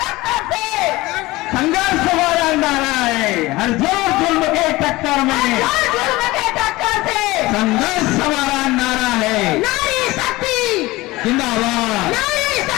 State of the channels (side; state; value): right; quieter; 20.0 dB